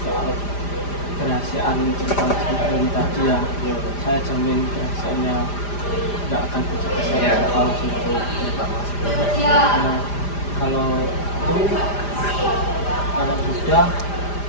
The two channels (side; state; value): right; late; 5.0 ms